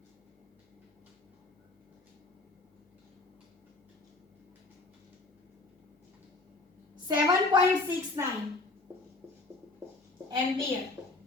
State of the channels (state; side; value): quieter; right; 3.3 dB